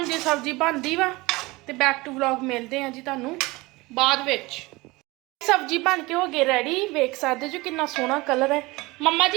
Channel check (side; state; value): left; quieter; 22.4 dB